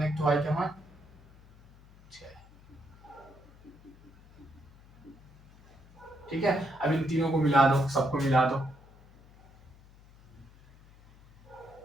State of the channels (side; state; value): left; noise; hum, 25 dB below the sound